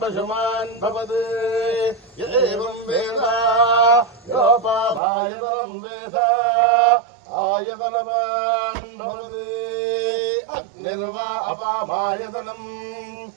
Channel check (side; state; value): left; drops out; at 5.0 s